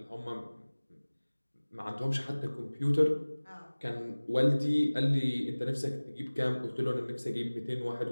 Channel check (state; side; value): inverted; both; correlation -1.00